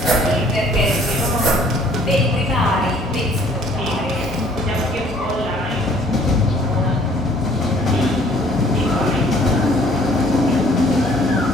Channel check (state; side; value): normal; both; correlation 0.57